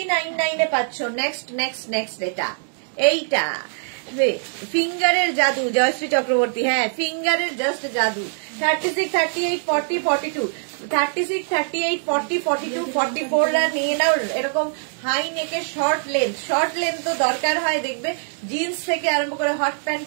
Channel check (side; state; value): left; silent; digital silence